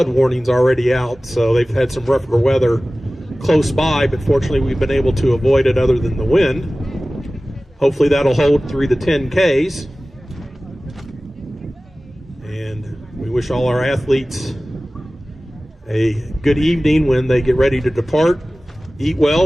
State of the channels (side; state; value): both; normal; correlation 0.97